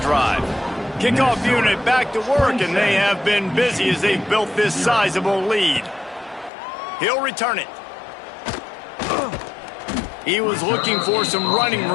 Kickoff unit back to work, and they have been busy as they've built this sizable lead. He'll return it. He was looking for some running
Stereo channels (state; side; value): drops out; right; at 6.5 s